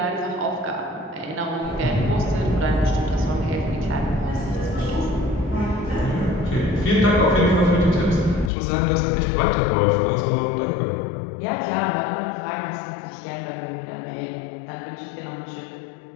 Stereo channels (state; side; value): drops out; right; at 8.5 s